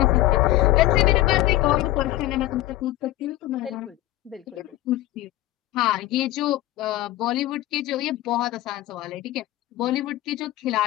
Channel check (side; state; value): right; quieter; 16.1 dB